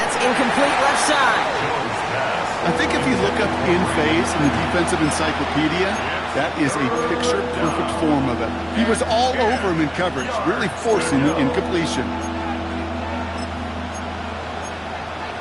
incomplete left side. I think if you look up in phase in the defensive encyclopedia, that is a picture-perfect form of it. He was all over him in coverage, really forcing the incompletion.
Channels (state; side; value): identical; both; correlation 1.00